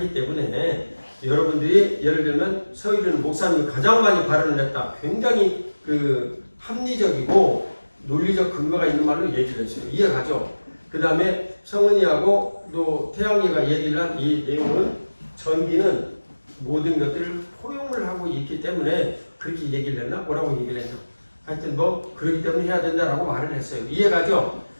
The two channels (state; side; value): inverted; both; correlation -1.00